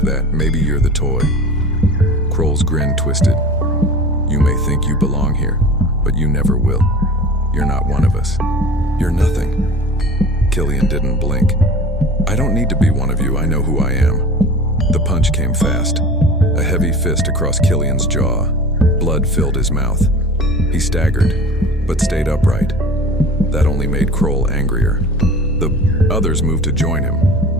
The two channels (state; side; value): normal; both; correlation 0.38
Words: that, maybe you're the toy. Kroll's grin twisted. You may think you belong here, but you never will. You're not one of us. You're nothing. Killian didn't blink. I don't need to be one of you, I know who I am. The punch came fast. A heavy fist across Killian's jaw. Blood filled his mouth. He staggered, but stayed upright. That only made Kroll angrier. The others moved to join him,